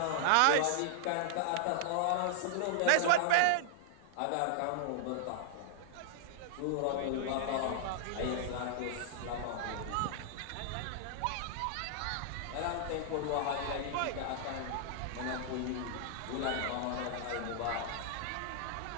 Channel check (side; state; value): both; different; correlation -0.01